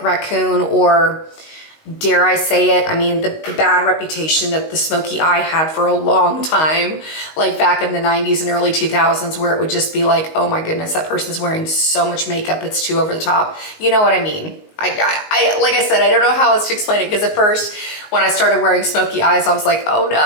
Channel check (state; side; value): late; right; 19 ms